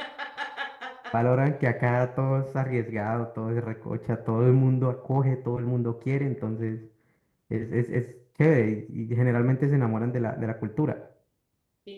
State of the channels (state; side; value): identical; both; correlation 1.00